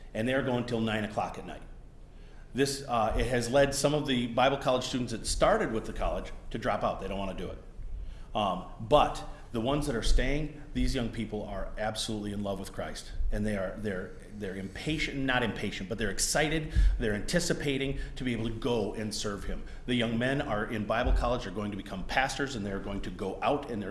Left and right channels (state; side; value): identical; both; correlation 1.00